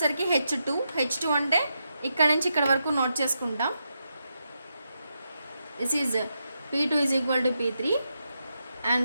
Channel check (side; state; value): both; inverted; correlation -0.85